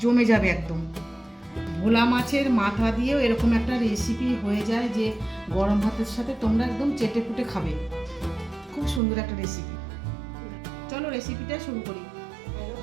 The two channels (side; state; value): left; drops out; at 9.0 s